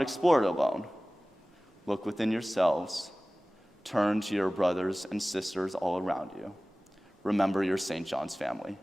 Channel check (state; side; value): normal; both; correlation 0.98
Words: explore it alone. Look within yourselves. Turn to your brothers and sisters all around you. Remember your St. John's family.